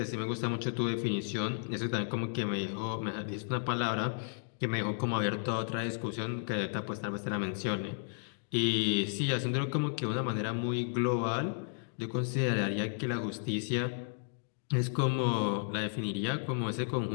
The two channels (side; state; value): right; silent; digital silence